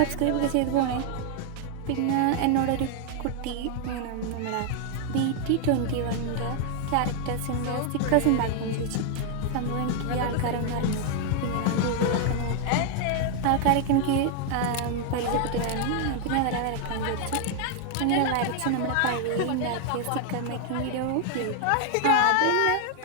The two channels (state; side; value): different; both; correlation 0.00